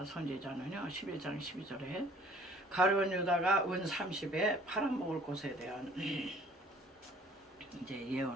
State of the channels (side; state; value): both; normal; correlation 0.55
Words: 선지자는요 11장 12절에 가룟 유다가 은 30에 팔아먹을 것에 대한 이제